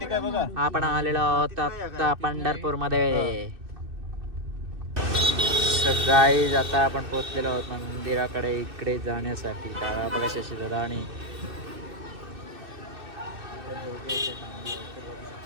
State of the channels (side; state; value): left; late; 2.6 ms